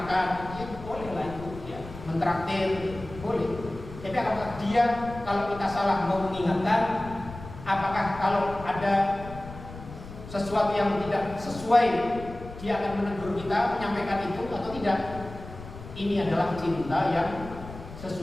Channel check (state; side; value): noise; left; rumble, 14 dB below the sound